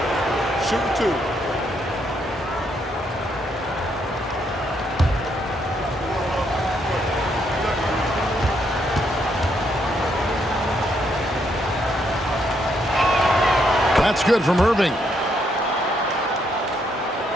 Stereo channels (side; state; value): both; normal; correlation 0.75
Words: Shoot 2. It's good from Irving.